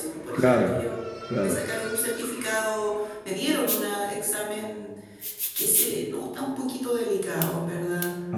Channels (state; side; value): identical; both; correlation 1.00